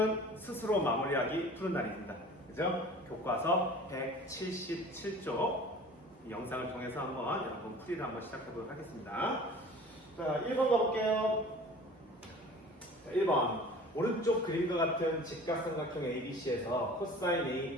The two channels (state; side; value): normal; both; correlation 0.43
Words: 스스로 마무리하기 푸는 날입니다. 그죠? 교과서 177쪽 영상을 통해서 한번 여러분 풀이를 한번 시작해 보도록 하겠습니다. 자, 1번 가볼게요. 자, 1번. 오른쪽 그림과 같은 직각삼각형 ABC에서 코사인 A